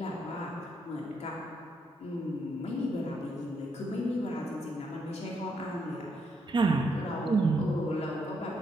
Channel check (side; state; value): both; normal; correlation 0.77